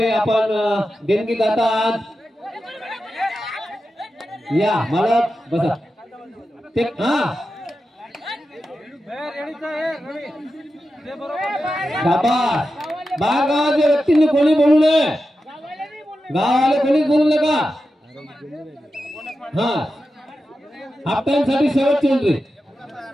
आपण देणगी दाता आहात. या मालक बसा. ते शाबास. बाहेर गावाच्या व्यक्तींनी कोणी बोलू नये. गावाले कोणीच बोलू नका. हाफ टाइम साठी शेवटची एंट्री.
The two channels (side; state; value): both; normal; correlation 0.91